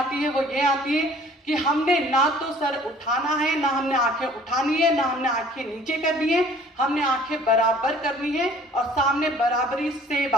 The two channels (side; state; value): both; normal; correlation 0.53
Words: है वो ये आती है कि हमने ना तो सर उठाना है, ना हमने आंखें उठानी है, ना हमने आंखें नीचे करनी है, हमने आंखें बराबर करनी है और सामने बराबरी से